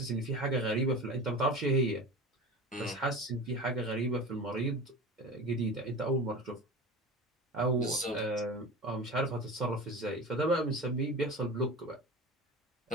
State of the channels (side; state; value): both; normal; correlation 0.32